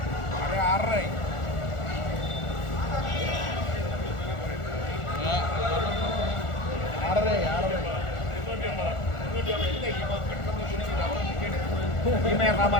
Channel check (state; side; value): late; right; 1.4 ms